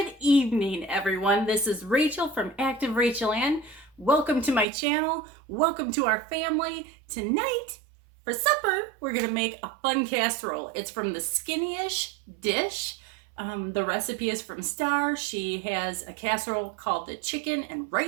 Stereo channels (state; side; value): drops out; left; at 4.7 s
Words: evening, everyone. This is Rachel from activerachelanne. Welcome to my channel. Welcome to our family. Tonight, for supper, we're gonna make a fun casserole. It's from the Skinnyish dish. The recipe is from Star. She has a casserole called the chicken and